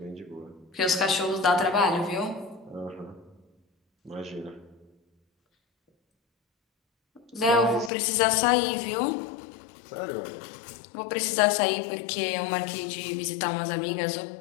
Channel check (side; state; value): right; drops out; at 7.9 s